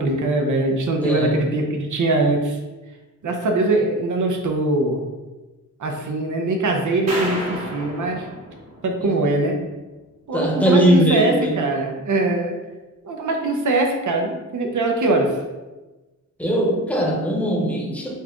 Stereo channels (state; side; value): normal; both; correlation 0.32